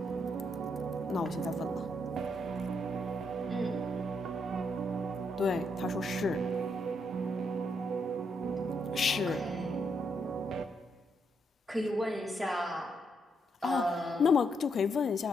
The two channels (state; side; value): normal; both; correlation 0.77